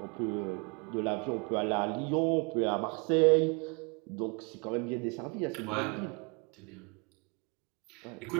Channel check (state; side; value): quieter; left; 32.7 dB